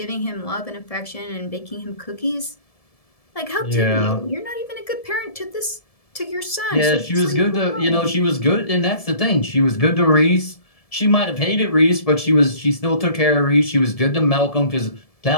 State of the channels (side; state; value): right; late; 1.7 ms